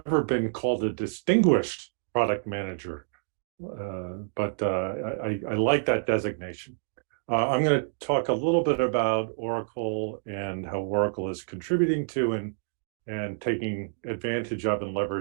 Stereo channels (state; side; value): silent; left; digital silence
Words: been called a distinguished product manager, but I like that designation. I'm going to talk a little bit about Oracle and how Oracle is contributing to and taking advantage of and